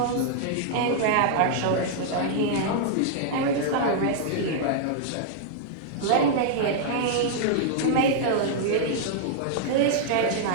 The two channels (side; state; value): both; different; correlation -0.01